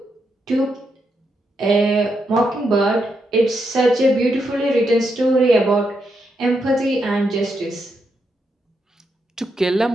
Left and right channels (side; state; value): both; normal; correlation 0.82